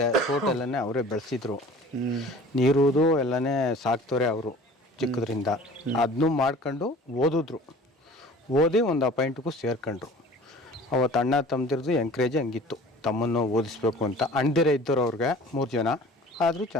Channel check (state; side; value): normal; both; correlation 0.45